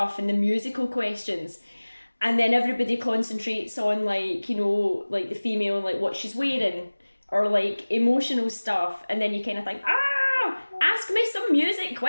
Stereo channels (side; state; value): both; inverted; correlation -1.00